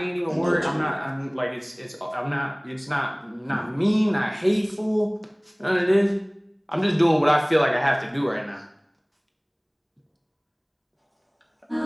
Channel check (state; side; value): identical; both; correlation 1.00